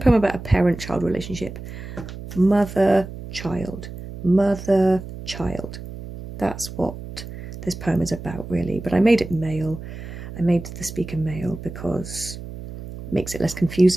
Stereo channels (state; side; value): noise; right; hum, 11 dB below the sound